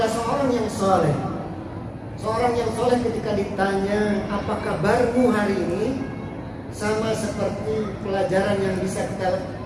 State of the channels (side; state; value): both; identical; correlation 1.00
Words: seorang yang soleh. Seorang yang soleh ketika ditanya apa kabarmu hari ini, sama seperti pelajaran yang bisa kita